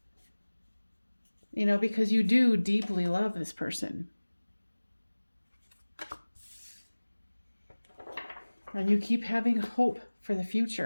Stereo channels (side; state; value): both; inverted; correlation -1.00